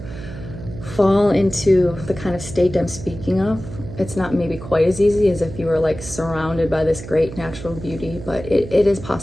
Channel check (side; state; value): right; noise; hum, 12 dB below the sound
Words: fall into the kind of state I'm speaking of. It's not maybe quite as easy as if you were like surrounded by this great natural beauty, but it is